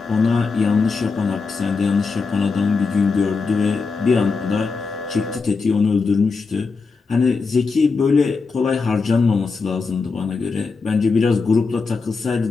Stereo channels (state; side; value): quieter; right; 4.5 dB